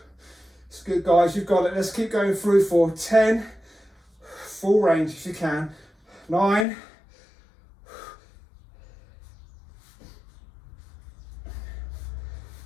It's good, guys, you've got it. Let's keep going through for 10, full range if you can. 9,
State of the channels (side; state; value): right; drops out; at 6.7 s